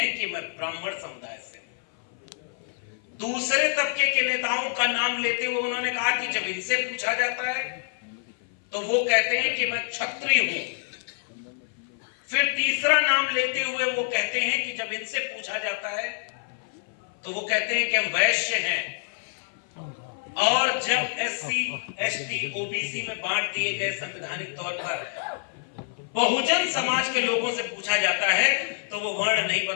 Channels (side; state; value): right; silent; 56 dB below the other